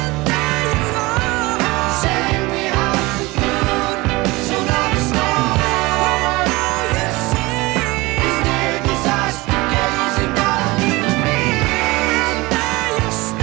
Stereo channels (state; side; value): quieter; left; 22.2 dB